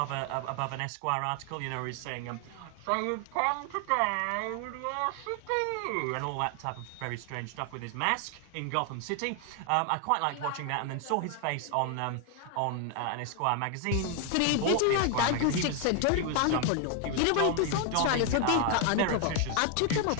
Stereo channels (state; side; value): different; both; correlation 0.01